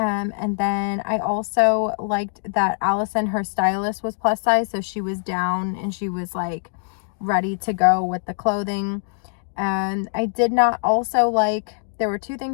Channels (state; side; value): silent; right; digital silence